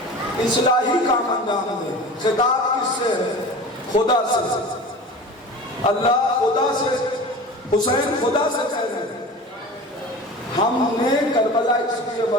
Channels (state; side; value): normal; both; correlation 0.36